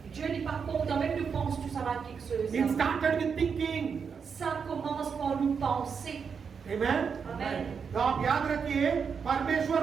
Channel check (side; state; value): left; quieter; 6.2 dB